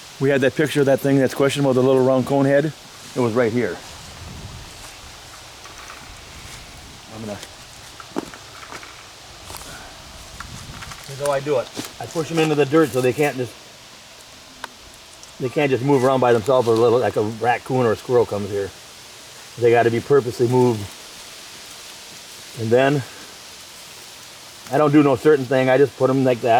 we had that picture of that thing that's questionable, the little round cone head. It was right here. I'm gonna I do it. I push them into the dirt so they can't just move around by themselves, or like a raccoon or a squirrel comes here. They got to be purposely moved. And then I don't do no certain thing. I just put them like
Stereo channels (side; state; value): both; identical; correlation 1.00